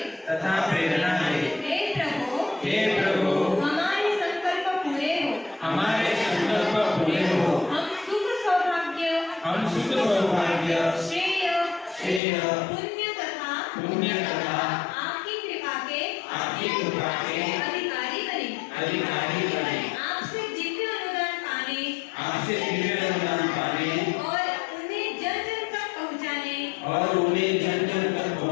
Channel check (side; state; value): right; drops out; at 12.2 s